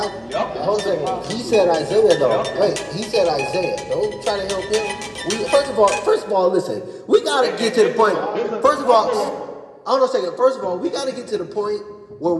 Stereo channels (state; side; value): identical; both; correlation 1.00